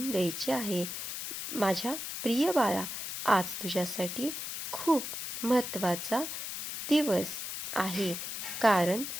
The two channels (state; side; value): noise; left; hiss, 6 dB below the sound